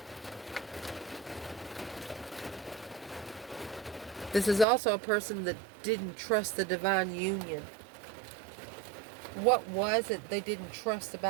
This is also a person that didn't trust the divine union. What was it they didn't trust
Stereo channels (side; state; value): left; drops out; at 4.7 s